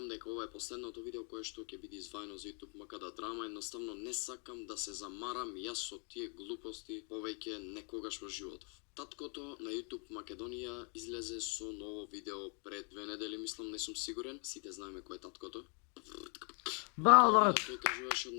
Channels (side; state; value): right; quieter; 37.2 dB